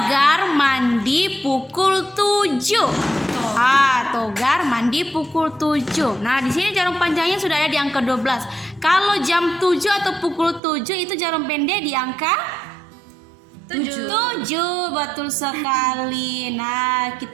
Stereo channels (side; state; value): left; drops out; at 10.6 s